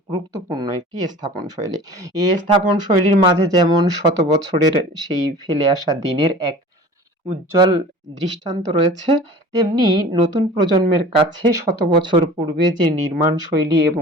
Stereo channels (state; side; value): normal; both; correlation 0.41